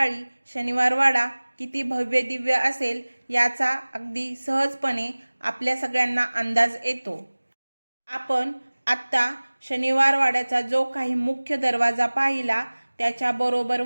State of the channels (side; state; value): both; inverted; correlation -1.00